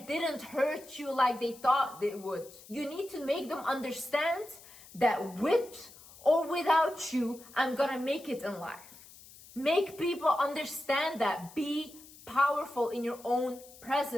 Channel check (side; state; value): left; noise; hiss, 20 dB below the sound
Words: didn't hurt you like they thought it would. You need to make them understand that with or without you, I'm gonna make it in life. Make people understand that. Be powerful in your own